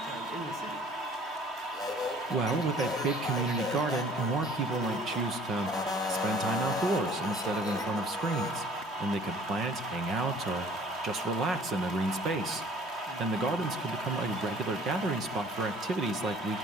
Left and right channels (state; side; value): normal; both; correlation 0.53